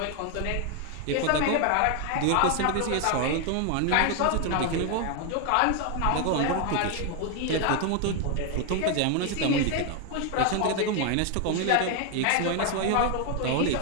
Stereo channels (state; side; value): different; both; correlation 0.01